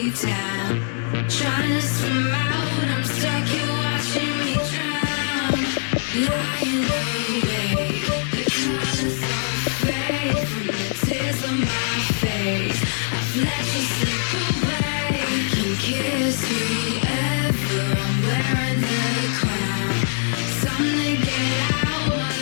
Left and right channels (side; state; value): right; silent; digital silence